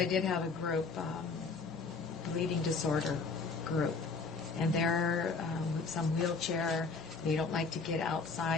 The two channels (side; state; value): right; quieter; 4.5 dB